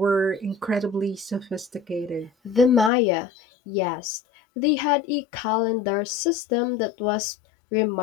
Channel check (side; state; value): right; drops out; at 2.9 s